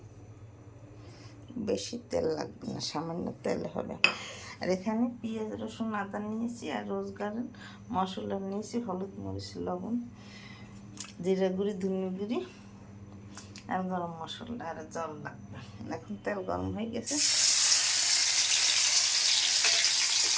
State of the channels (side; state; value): both; identical; correlation 1.00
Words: বেশি তেল লাগবে না, সামান্য তেল হবে। আর এখানে পেঁয়াজ রসুন আদা নিয়েছি, আর রোজগার মশলা নিয়েছি, হলুদ মরিচ লবণ জিরা গুঁড়ি ধনে গুঁড়ি আর গরম মশলা আর জল লাগবে। এখন তেল গরম হয়ে গেছে,